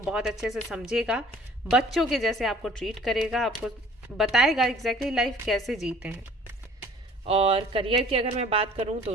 बहुत अच्छे से समझेगा, बच्चों के जैसे आपको ट्रीट करेगा, आपको बताएगा एग्जैक्टली लाइफ कैसे जीते हैं। और करियर की अगर मैं बात करूं तो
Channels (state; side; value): normal; both; correlation 0.51